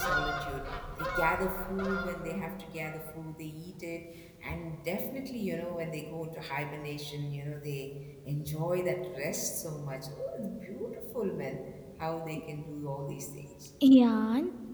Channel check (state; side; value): identical; both; correlation 1.00